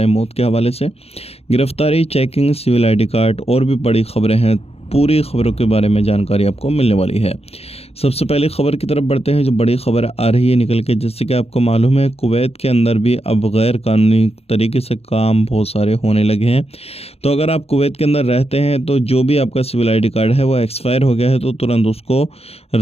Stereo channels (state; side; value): late; right; 0.29 ms